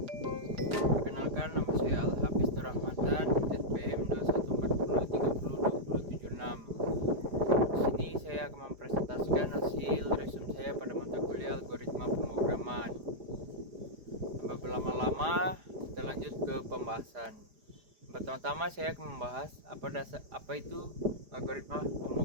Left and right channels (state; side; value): late; left; 4.9 ms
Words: Perkenalkan, nama saya Al-Hafiz Nur Rahmatan, SPM 2140302076. Di sini saya akan mempresentasikan hasil resume saya pada mata kuliah algoritma pemrograman. Tanpa berlama-lama, kita lanjut ke pembahasan. Pertama-tama saya akan membahas apa itu algoritma